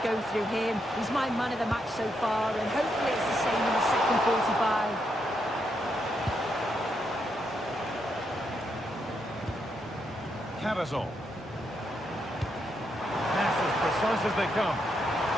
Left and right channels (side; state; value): both; normal; correlation 0.80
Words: go through him. He's my man of the match so far, and hopefully it's the same in the second 45. Karazor. Pass as precise as they come.